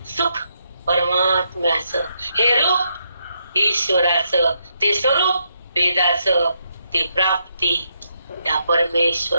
सुख परमात्म्याचं, हे रूप ईश्वराचं, ते स्वरूप वेदाचं, ती प्राप्ती त्या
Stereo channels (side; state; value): both; inverted; correlation -0.79